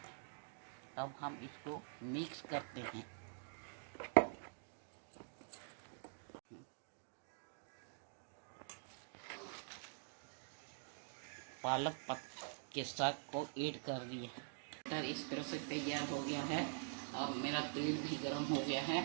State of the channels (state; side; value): silent; left; digital silence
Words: अब हम इसको मिक्स करते हैं। पालक के साग को ऐड कर दिए। मटर इस तरह से तैयार हो गया है और मेरा तेल भी गर्म हो गया है।